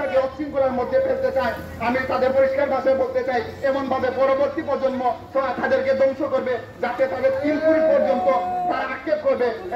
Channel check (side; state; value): both; identical; correlation 1.00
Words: অশৃঙ্খলার মধ্যে ফেলতে চায় আমি তাদের পরিষ্কার ভাষায় বলতে চাই এমন ভাবে পরবর্তী প্রজন্ম তাদেরকে ধ্বংস করবে যাতে তাদের 3 পুরী পর্যন্ত তারা আক্ষেপ করবে।